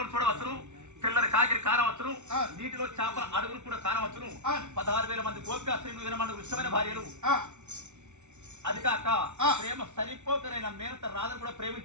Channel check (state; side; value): late; left; 0.83 ms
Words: చూడవచ్చును, తెల్లని కాకిరి కానవచ్చును, నీటిలో చేపల అడుగులు కూడా కానవచ్చును. 16,000 మంది గోపికా స్త్రీలు 20 మంది ఇష్టమైన భార్యలు. అది కాక ప్రేమ సరిపోకరైన మేనత రాధను కూడా